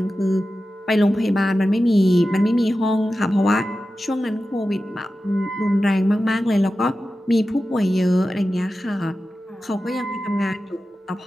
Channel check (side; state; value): both; normal; correlation 0.93